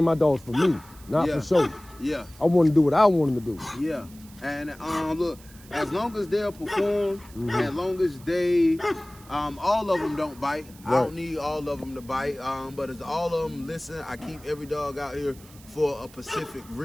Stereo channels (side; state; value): right; noise; hiss, 23 dB below the sound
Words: my dogs for me, not for show. Yeah. I want to do what I want them to do. Yeah. And look, as long as they'll perform, as long as they, all of them don't bite. I don't need all of them to bite. But as all of them listen, I keep every dog out here for a specific